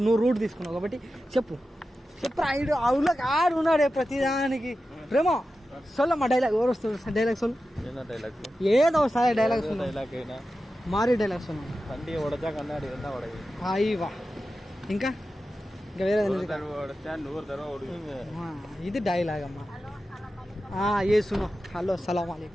నువ్వు రూట్ తీసుకున్నావు కాబట్టి చెప్పు అవులో ఆడు ఉన్నాడే ప్రతిదానికి. ప్రేమ సొల్లమ్మా డైలాగ్, ఎవరు వస్తుంది డైలాగ్ సొల్లు, ఏదో సాయ డైలాగ్ మారి డైలాగ్ సొల్లు. అయ్యవా ఇంకా వేరే ఇది డైలాగ్ అమ్మా. ये सुनो, हेलो सलाम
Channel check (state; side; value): normal; both; correlation 0.92